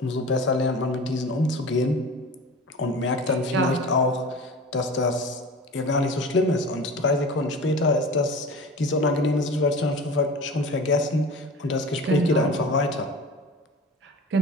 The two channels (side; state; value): both; normal; correlation 0.35